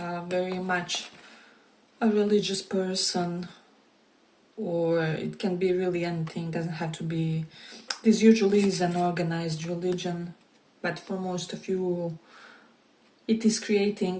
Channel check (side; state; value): both; identical; correlation 1.00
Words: very much a religious person, or it can be really anything, doesn't have to be. This usually is an organized religion, but for most of you it is